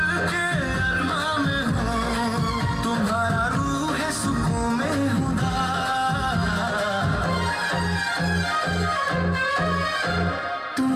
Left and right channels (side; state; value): both; identical; correlation 1.00